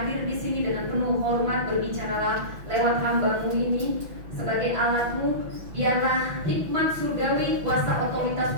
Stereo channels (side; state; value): left; late; 6.0 ms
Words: di sini dengan penuh hormat, berbicaralah lewat hamba-Mu ini. Sebagai alat-Mu, biarlah hikmat surgawi, kuasa otoritas